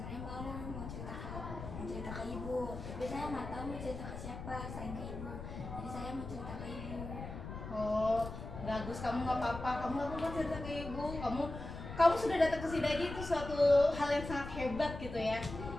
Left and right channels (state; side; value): noise; left; rumble, 9 dB below the sound